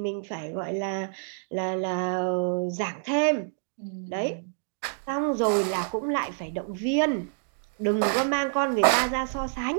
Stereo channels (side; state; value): left; silent; digital silence